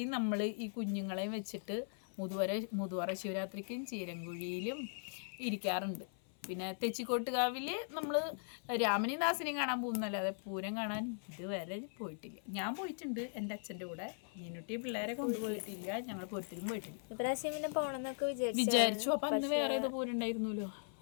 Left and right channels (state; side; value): silent; right; 52 dB below the other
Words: നമ്മൾ ഈ കുഞ്ഞുങ്ങളെയും വെച്ചിട്ട് മുതുവറ ശിവരാത്രിക്കും ചീരങ്കുഴിയിലും ഇരിക്കാറുണ്ട്. പിന്നെ തെച്ചിക്കോട്ടുകാവിൽ നമ്മൾ രാമനെയും ദാസനെയും കാണാൻ പോകുന്നല്ലാതെ പൂരം കാണാൻ ഇതുവരെ പോയിട്ടില്ല. ഞാൻ പോയിട്ടുണ്ട് എൻ്റെ അച്ഛൻ്റെ കൂടെ, മീനുട്ടി പിള്ളേരെ കൊണ്ടുപോയിട്ടില്ല. ഞങ്ങൾ പൂരത്തിലും പോയിട്ടില്ല. വിചാരിച്ചു. അപ്പം അന്ന് വേറെ ഏതോ പൂരം ഉണ്ടായിരുന്നല്ലോ,